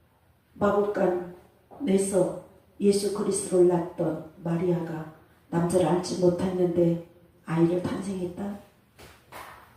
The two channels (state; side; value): identical; both; correlation 1.00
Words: 마국간에서 예수 그리스도를 낳던 마리아가 남자를 알지 못했는데 아이를 탄생했다?